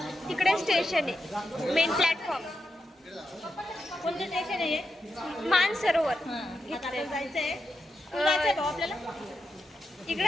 तिकडे स्टेशन आहे मेन प्लॅटफॉर्म. कोणतं स्टेशन आहे? मानसरोवर आपल्याला जायचंय अं, आपल्याला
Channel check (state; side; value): normal; both; correlation 0.87